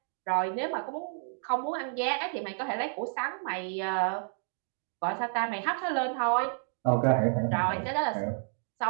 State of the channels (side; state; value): left; silent; digital silence